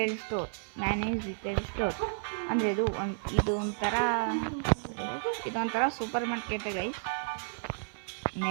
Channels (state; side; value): silent; left; 57 dB below the other